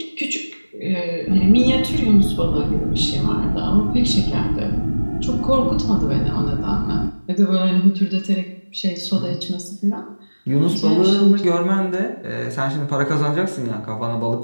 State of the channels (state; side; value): inverted; both; correlation -1.00